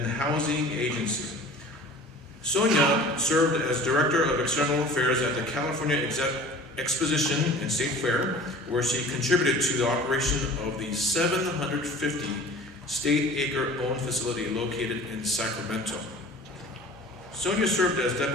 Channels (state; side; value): normal; both; correlation 0.43